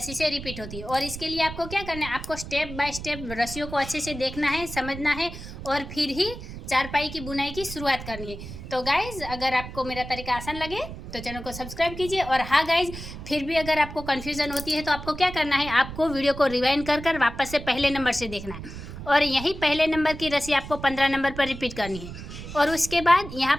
से रिपीट होती है। और इसके लिए आपको क्या करना है, आपको स्टेप बाय स्टेप रस्सियों को अच्छे से देखना है, समझना है और फिर ही चारपाई की बुनाई की शुरुआत करनी है। तो गाइज़ अगर आपको मेरा तरीका आसान लगे तो चैनल को सब्सक्राइब कीजिए। और हाँ गाइज़, फिर भी अगर आपको कन्फ्यूज़न होती है तो आपको क्या करना है, आपको वीडियो को रिवाइंड कर वापस से पहले नंबर से देखना है और यही पहले नंबर की रस्सी आपको 15 नंबर पर रिपीट करनी है और उसके बाद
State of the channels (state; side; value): noise; right; rumble, 11 dB below the sound